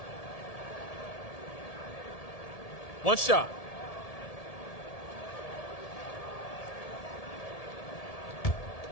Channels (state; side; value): late; right; 1.7 ms